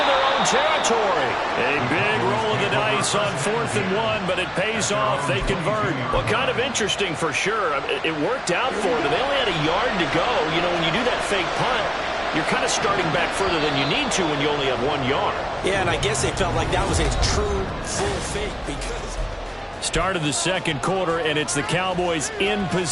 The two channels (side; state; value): both; identical; correlation 1.00